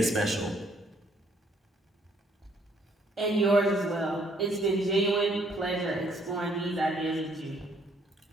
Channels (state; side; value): normal; both; correlation 0.66